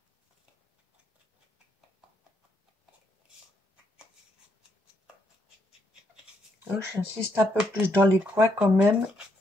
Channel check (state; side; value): normal; both; correlation 0.76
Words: Donc, j'insiste un peu plus dans les coins quand même.